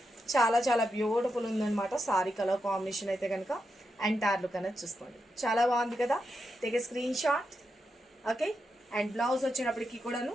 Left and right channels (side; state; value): both; normal; correlation 0.86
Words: చాలా బ్యూటిఫుల్ ఉందన్నమాట. సారీ కలర్ కాంబినేషన్ అయితే కనుక ఎంటైర్ లుక్ అనేది చూసుకోండి, చాలా బాగుంది కదా. Take a screenshot. Okay, and blouse వచ్చినప్పటికీ కూడాను